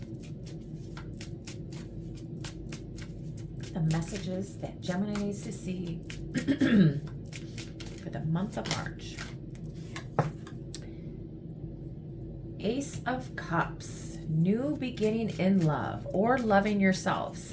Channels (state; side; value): identical; both; correlation 1.00